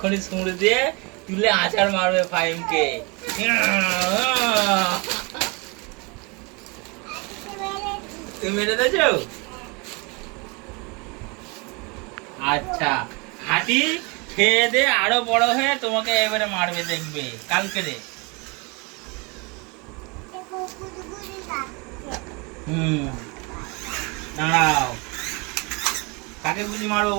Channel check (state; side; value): quieter; left; 29.4 dB